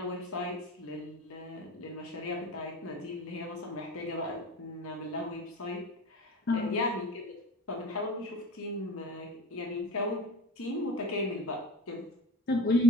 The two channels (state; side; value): normal; both; correlation 0.30